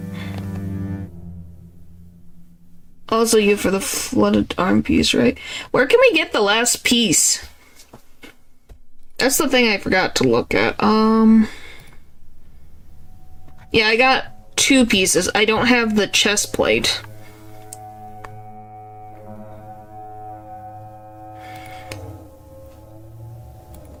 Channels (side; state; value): both; identical; correlation 1.00